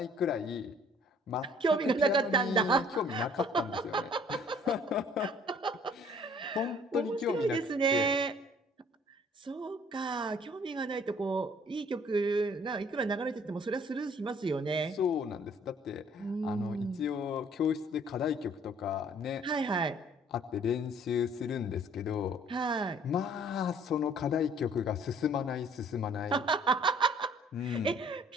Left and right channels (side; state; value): both; normal; correlation 0.57